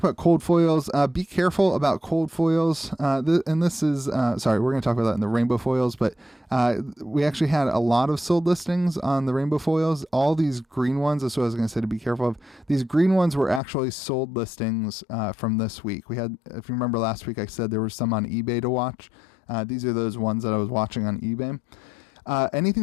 about cold foils. Be careful about cold foils. And this is, we're going to talk about that in the rainbow foils, but we actually had a lot of sold listings on the rainbow foils. All these green ones, that's what I was going to say to be careful of. These green ones were actually sold listings from this week. We had, if you remember last week, I said there were some on eBay to watch. These are those ones that I was watching on eBay.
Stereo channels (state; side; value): drops out; right; at 13.6 s